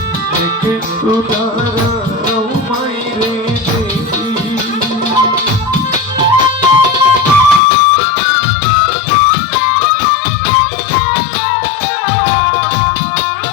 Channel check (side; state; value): right; drops out; at 7.6 s